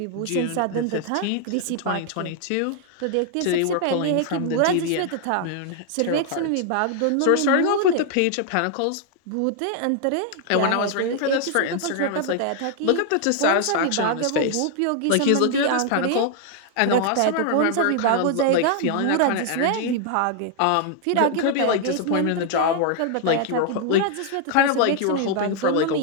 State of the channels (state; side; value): different; both; correlation 0.00